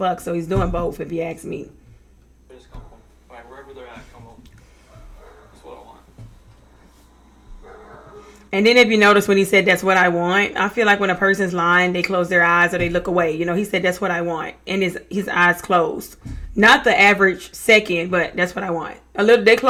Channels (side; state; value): both; identical; correlation 1.00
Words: so he's doing both if you ask me. Just come home. Right, wherever they're at, come home. That's what I want. And then if you notice when he said that's what I want, I feel like when a person's lying, they close their eyes or they look away. You know, he said that's what I want. And his eyes closed. Not the average second, but that's what I want. They